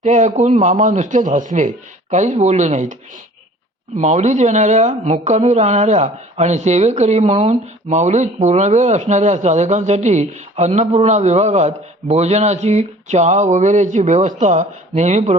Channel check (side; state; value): both; normal; correlation 0.48